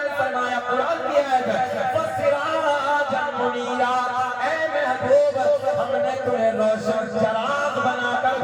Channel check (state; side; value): identical; both; correlation 1.00